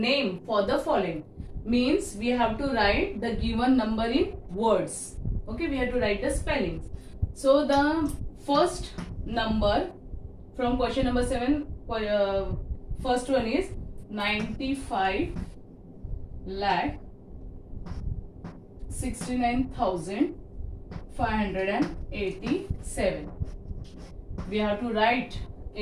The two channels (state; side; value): identical; both; correlation 1.00